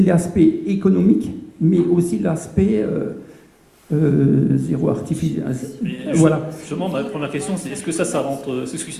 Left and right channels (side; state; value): both; identical; correlation 1.00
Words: l'aspect économique, mais aussi l'aspect zéro artificiel. Voilà. Justement, ma première question, c'est est-ce que ça rentre? Est-ce que